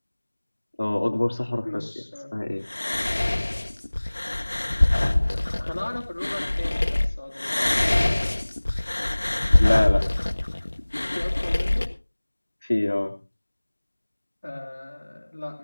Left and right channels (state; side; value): inverted; both; correlation -1.00